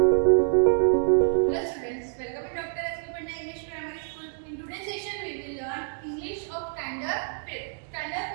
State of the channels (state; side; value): silent; left; digital silence